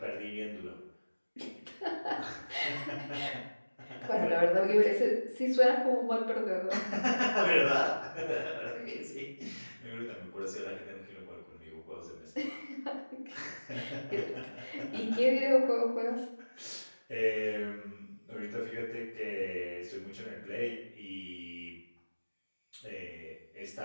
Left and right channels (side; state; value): both; inverted; correlation -1.00